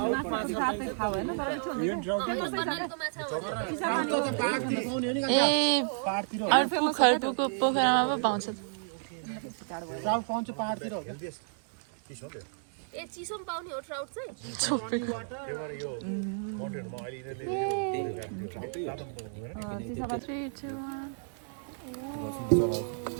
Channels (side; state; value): left; silent; 57 dB below the other